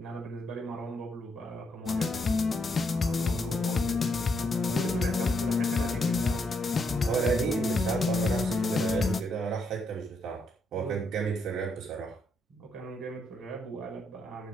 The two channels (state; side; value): normal; both; correlation 0.77